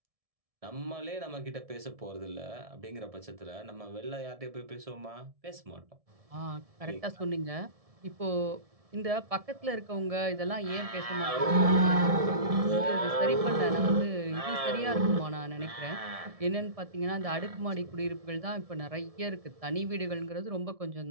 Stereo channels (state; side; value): late; left; 1.7 ms